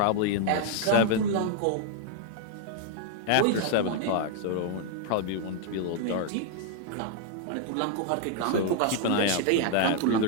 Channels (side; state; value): both; different; correlation 0.00